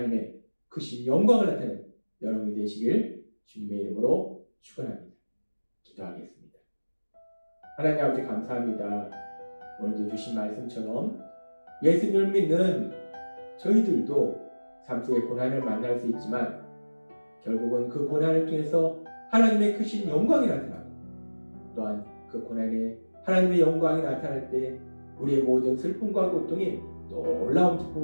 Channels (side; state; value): both; inverted; correlation -1.00